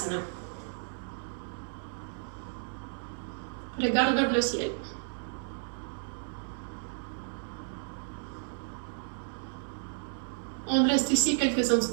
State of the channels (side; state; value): left; silent; 56 dB below the other